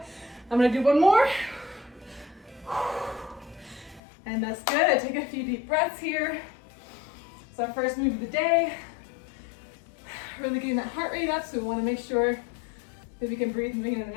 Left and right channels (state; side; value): drops out; right; at 4.0 s